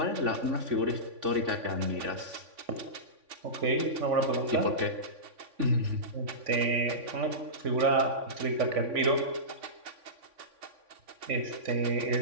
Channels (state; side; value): late; left; 3.5 ms